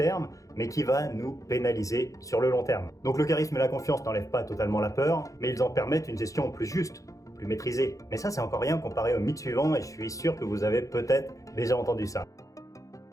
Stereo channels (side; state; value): right; late; 0.16 ms